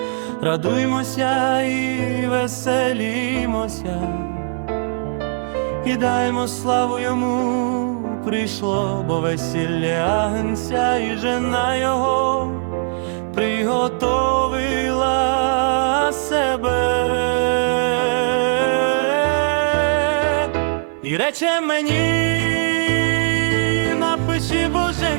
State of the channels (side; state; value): left; silent; 57 dB below the other